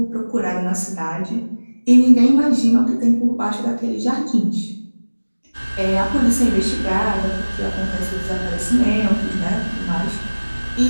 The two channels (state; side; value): inverted; both; correlation -1.00